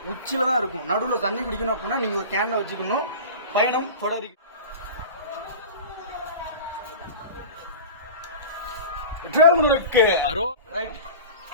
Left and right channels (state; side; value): inverted; both; correlation -0.34